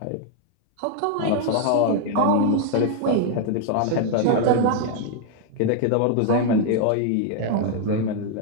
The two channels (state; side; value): different; both; correlation 0.00